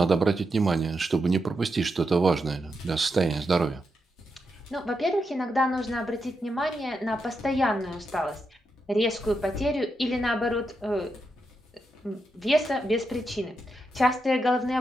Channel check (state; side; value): normal; both; correlation 0.85